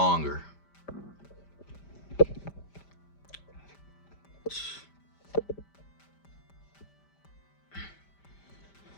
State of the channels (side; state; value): right; late; 5.1 ms